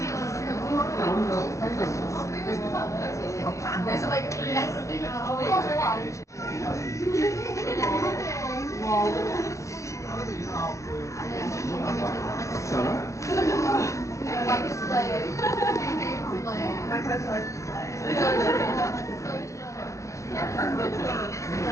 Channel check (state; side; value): late; right; 0.15 ms